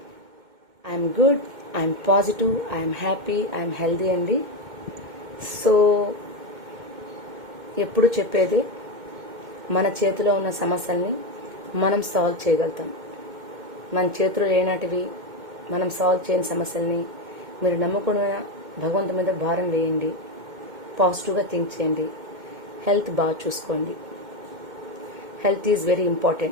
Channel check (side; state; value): left; late; 2.2 ms